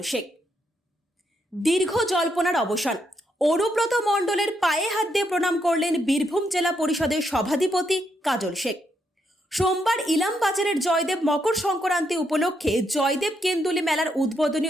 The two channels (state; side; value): normal; both; correlation 0.78